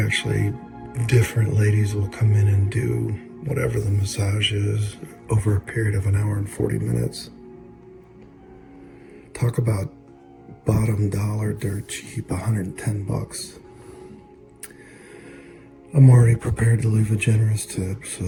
different ladies will come in and do whatever the massage is over a period of 1 hour and 40 minutes. Talk about bottom dollar, dirt cheap, 110 bucks. I'm already prepared to leave a generous tip,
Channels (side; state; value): both; identical; correlation 1.00